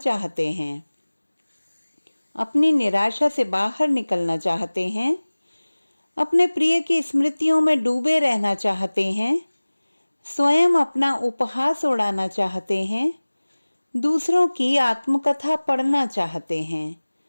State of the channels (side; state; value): both; inverted; correlation -1.00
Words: हैं? अपनी निराशा से बाहर निकलना चाहते हैं, अपने प्रिय की स्मृतियों में डूबे रहना चाहते हैं, स्वयं अपना उपहास उड़ाना चाहते हैं, दूसरों की आत्मकथा पढ़ना चाहते हैं?